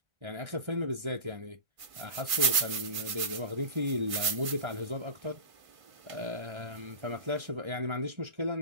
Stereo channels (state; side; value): late; left; 1.5 ms